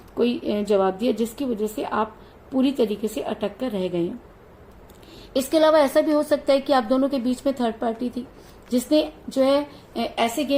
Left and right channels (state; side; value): identical; both; correlation 1.00